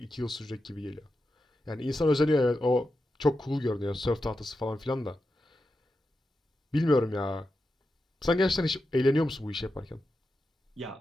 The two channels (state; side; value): normal; both; correlation 0.89